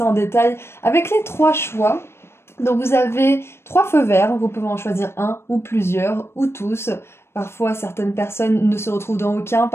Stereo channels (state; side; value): late; right; 0.12 ms